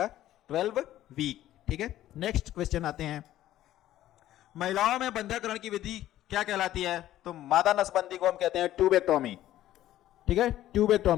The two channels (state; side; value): quieter; right; 13.5 dB